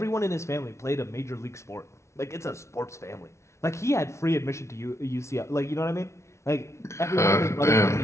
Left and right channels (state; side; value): late; right; 0.13 ms